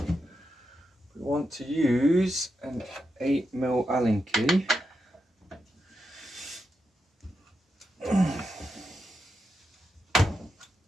we want to use an 8mm Allen key. And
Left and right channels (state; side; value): normal; both; correlation 0.86